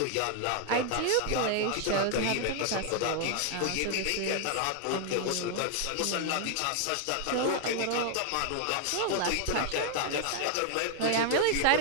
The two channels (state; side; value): different; both; correlation 0.00